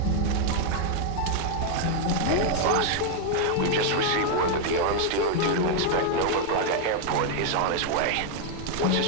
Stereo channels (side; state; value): both; different; correlation 0.00